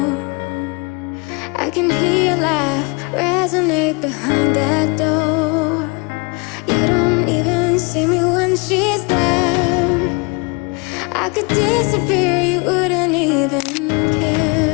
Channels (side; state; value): right; quieter; 29.2 dB